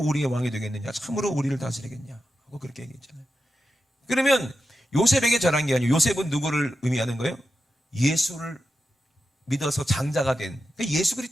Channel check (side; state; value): both; normal; correlation 0.90